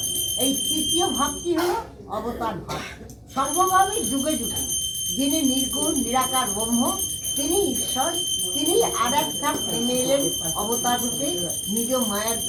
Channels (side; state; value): both; identical; correlation 1.00